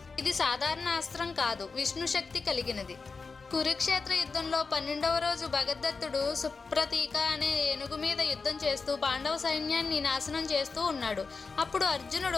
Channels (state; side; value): quieter; right; 4.6 dB